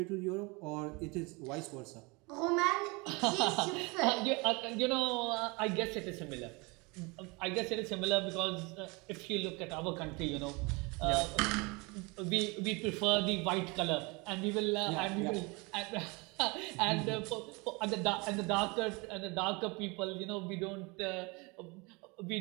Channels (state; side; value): quieter; left; 27.6 dB